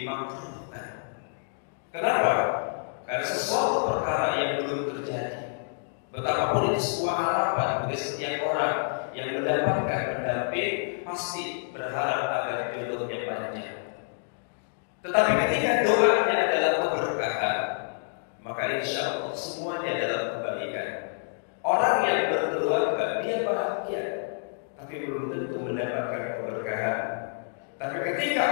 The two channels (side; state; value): right; silent; digital silence